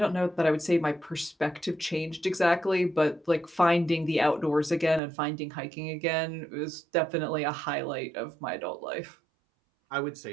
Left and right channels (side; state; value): left; drops out; at 5.0 s